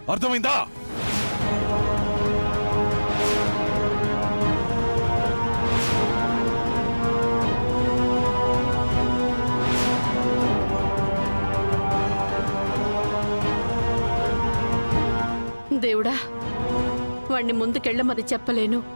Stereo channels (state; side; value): inverted; both; correlation -1.00